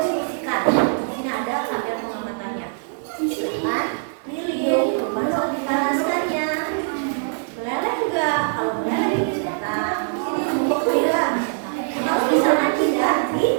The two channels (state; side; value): silent; left; 60 dB below the other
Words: Ini ada tabel pengamatannya. Silakan pilih perubahan dipanaskannya. Meleleh juga, kalau meleleh dicentang. Ini bubuk tidak. Kalau misalkan tidak,